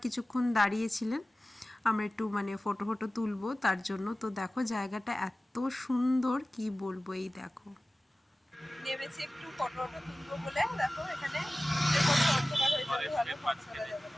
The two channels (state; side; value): normal; both; correlation 0.97